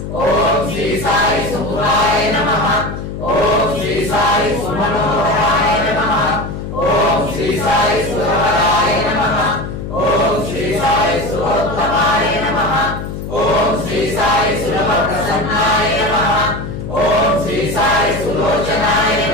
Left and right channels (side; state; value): left; noise; hum, 7 dB below the sound